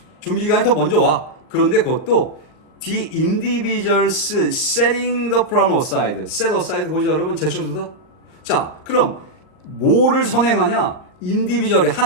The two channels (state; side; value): late; right; 39 ms